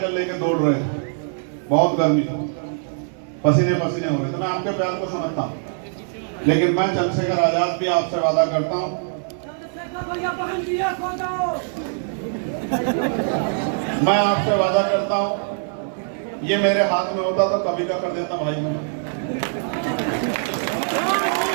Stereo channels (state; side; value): silent; left; digital silence